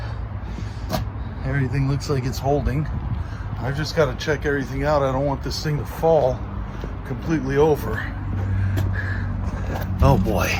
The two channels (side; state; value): both; identical; correlation 1.00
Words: everything looks like it's holding. I've just got to check everything out. I don't want this thing to fall completely over. Oh boy.